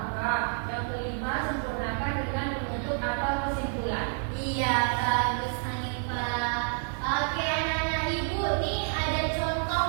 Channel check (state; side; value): silent; left; 56 dB below the other